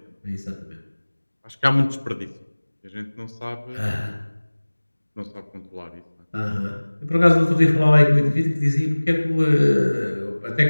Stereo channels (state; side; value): inverted; both; correlation -1.00